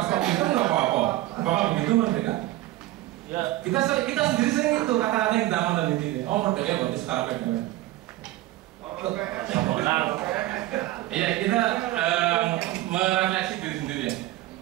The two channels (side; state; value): left; quieter; 16.7 dB